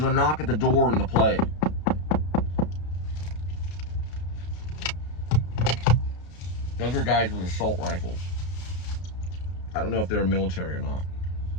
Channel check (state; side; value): late; right; 33 ms